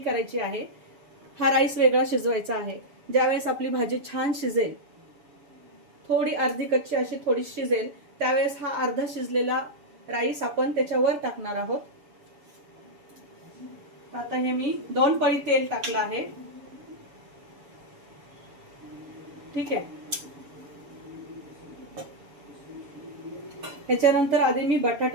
आहे, हा राईस वेगळा शिजवायचा आहे। ज्यावेळेस आपली भाजी छान शिजेल, थोडी अर्धी कच्ची अशी थोडी शिजेल, त्यावेळेस हा अर्धा शिजलेला राईस आपण त्याच्यावर टाकणार आहोत। आता हे मी 2 पळी तेल टाकलं आहे। ठीक आहे। त्याच्यानंतर आधी मी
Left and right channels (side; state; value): left; late; 7.1 ms